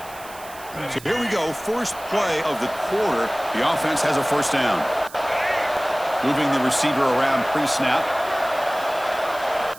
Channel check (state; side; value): noise; right; hiss, 18 dB below the sound